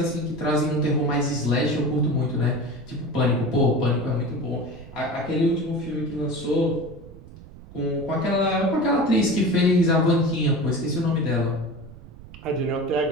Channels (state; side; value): noise; right; rumble, 18 dB below the sound